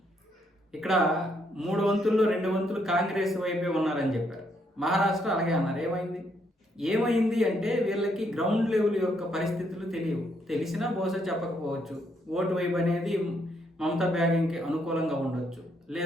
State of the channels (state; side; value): normal; both; correlation 0.73